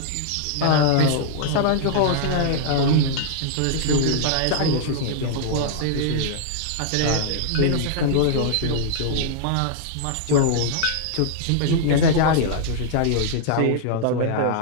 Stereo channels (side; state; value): both; different; correlation -0.01